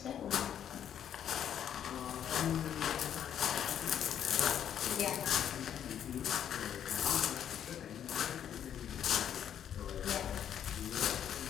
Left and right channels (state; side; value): quieter; right; 9.5 dB